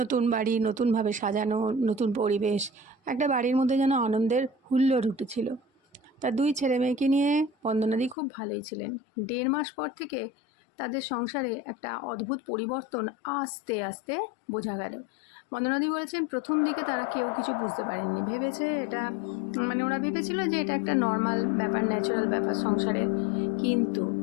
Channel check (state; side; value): drops out; right; at 8.2 s